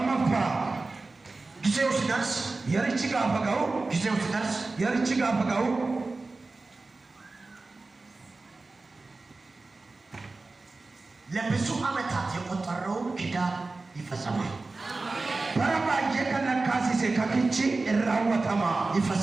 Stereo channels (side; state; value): left; quieter; 3.5 dB